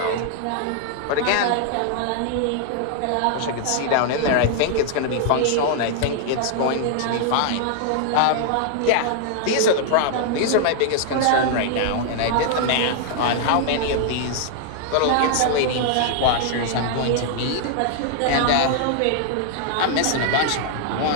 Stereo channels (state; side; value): different; both; correlation 0.00